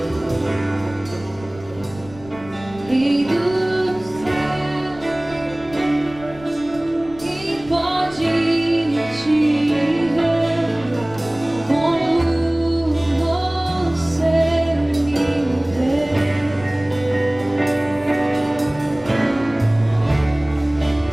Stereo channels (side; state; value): left; noise; rumble, 20 dB below the sound